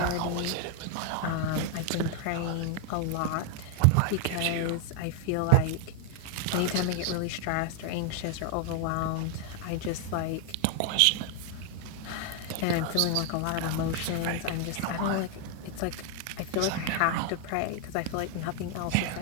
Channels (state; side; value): different; both; correlation 0.00